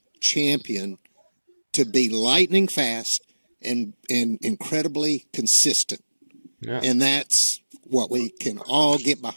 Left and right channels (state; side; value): inverted; both; correlation -1.00